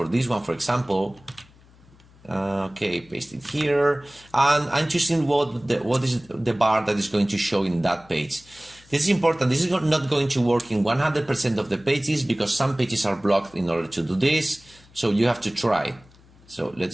this one, for example. Okay, paste it here, and I'm choosing what is the bar that is going to show in that page. This is important. This is not going to work in 100% of the pages because some pages are blocked in order to do this. So you have to try. So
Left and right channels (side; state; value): left; noise; hum, 27 dB below the sound